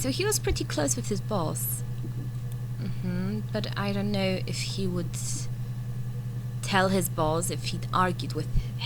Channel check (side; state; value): both; identical; correlation 1.00